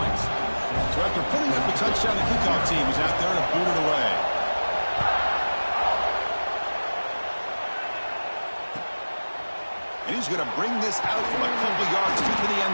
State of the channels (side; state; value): both; inverted; correlation -1.00